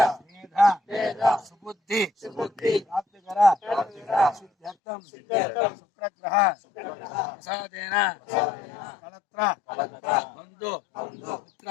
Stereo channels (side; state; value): right; drops out; at 4.8 s